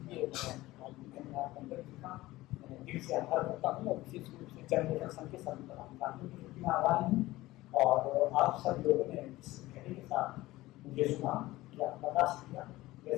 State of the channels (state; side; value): quieter; right; 17.9 dB